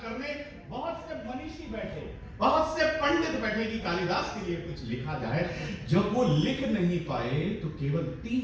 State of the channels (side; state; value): both; identical; correlation 1.00